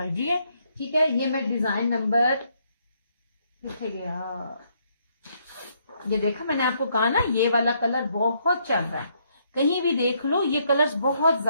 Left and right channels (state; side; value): inverted; both; correlation -0.72